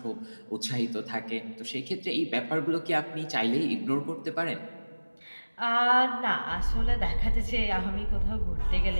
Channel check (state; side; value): inverted; both; correlation -1.00